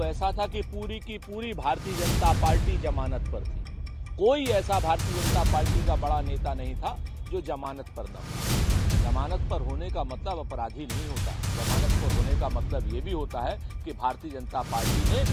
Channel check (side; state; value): both; identical; correlation 1.00